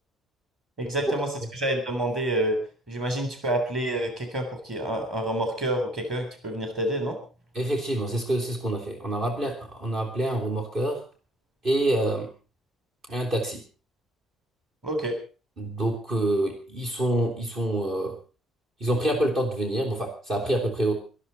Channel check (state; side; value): normal; both; correlation 0.62